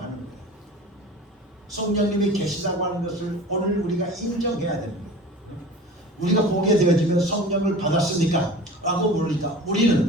거예요. 성령님이 계시다고 하는 것을 오늘 우리가 인정해야 되는 거예요. 우리가 보게 되어지면 성령을 받았습니까? 라고 물으니까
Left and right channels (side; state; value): both; normal; correlation 0.38